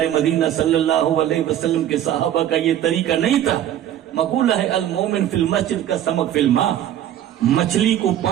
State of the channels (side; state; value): left; quieter; 11.4 dB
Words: مدینہ صلی اللہ علیہ وسلم کے صحابہ کا یہ طریقہ نہیں تھا. مقولہ ہے المومن فی المسجد کا سمک فی الماء. مچھلی کو